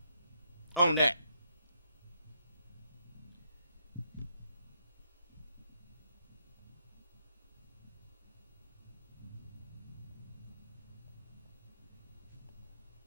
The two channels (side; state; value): both; inverted; correlation -0.78